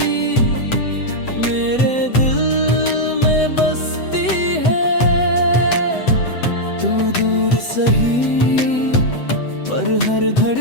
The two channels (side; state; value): right; late; 8.0 ms